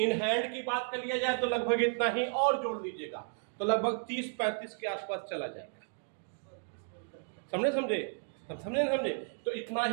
हैंड की बात कर लिया जाए तो लगभग इतना ही, और जोड़ लीजिएगा तो लगभग 30-35 के आसपास चला जाएगा, समझे। तो इतना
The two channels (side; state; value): left; silent; 55 dB below the other